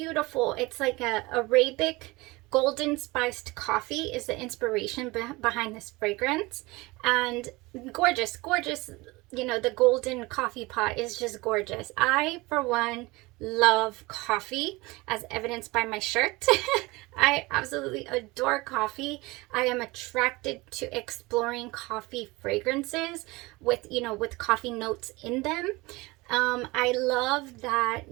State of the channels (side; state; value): left; quieter; 22.8 dB